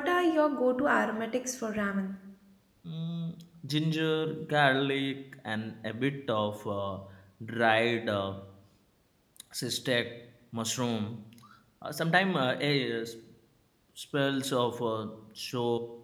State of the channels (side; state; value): both; identical; correlation 1.00